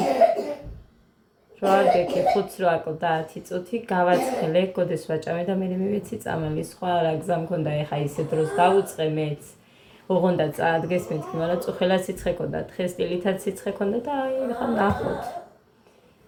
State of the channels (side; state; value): both; identical; correlation 1.00